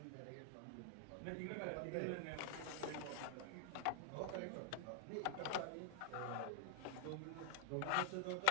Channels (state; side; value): different; both; correlation 0.00